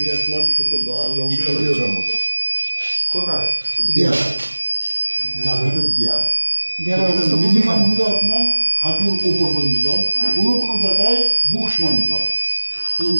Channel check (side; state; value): both; inverted; correlation -1.00